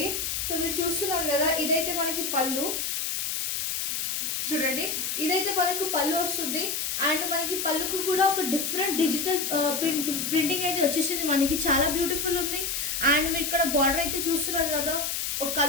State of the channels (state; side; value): noise; left; hiss, 1 dB below the sound